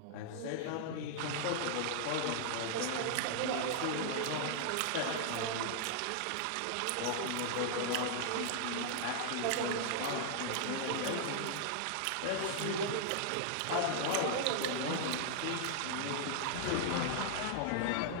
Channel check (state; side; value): different; both; correlation -0.01